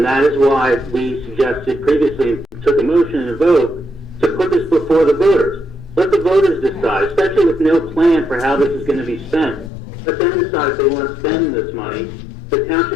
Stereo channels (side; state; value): right; drops out; at 9.7 s